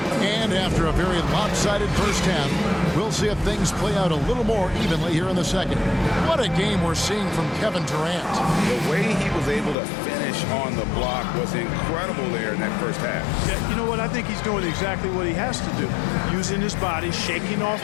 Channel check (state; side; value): drops out; right; at 9.8 s